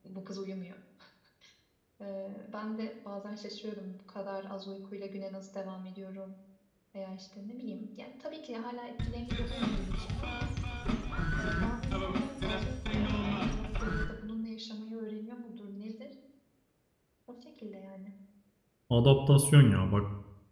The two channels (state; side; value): identical; both; correlation 1.00